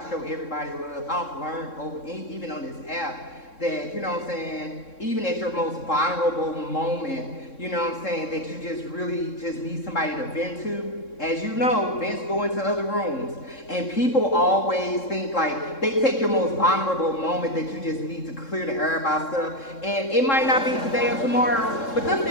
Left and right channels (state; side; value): late; right; 3.7 ms